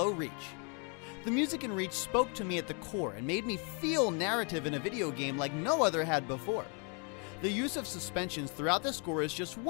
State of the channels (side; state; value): right; quieter; 36.8 dB